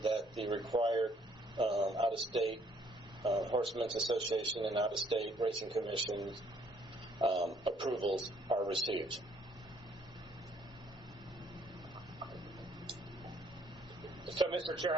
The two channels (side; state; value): both; normal; correlation 0.64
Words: that the required out-of-state Horsemen's Association and out-of-state racing commissions approvals are received. So, Mr. Chair,